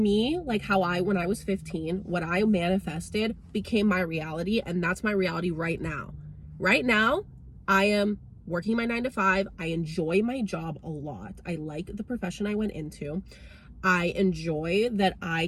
like how when I was 15, what I manifested became my reality. And that's my reality right now. Right now, I am working my 9-to-5. I enjoy my job a lot. I like the profession I went into. I enjoy that I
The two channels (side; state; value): both; identical; correlation 1.00